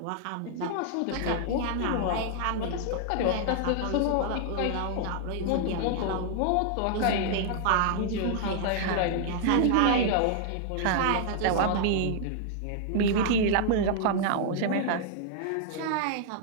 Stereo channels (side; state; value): both; different; correlation -0.01